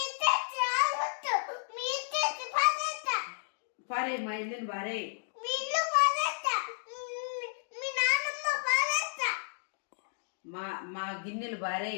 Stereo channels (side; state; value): right; silent; digital silence